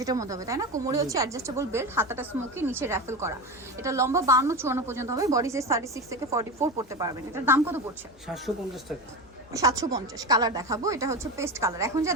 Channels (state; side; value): normal; both; correlation 0.22